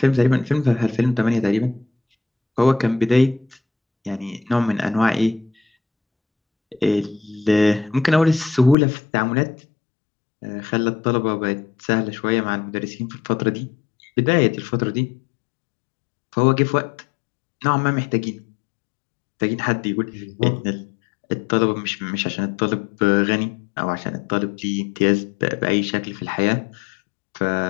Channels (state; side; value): drops out; right; at 8.8 s